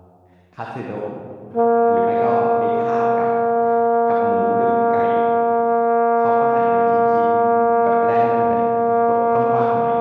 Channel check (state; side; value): identical; both; correlation 1.00